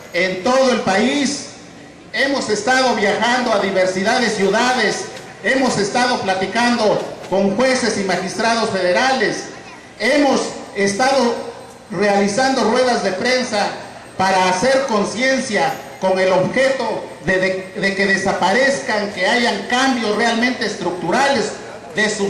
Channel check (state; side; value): identical; both; correlation 1.00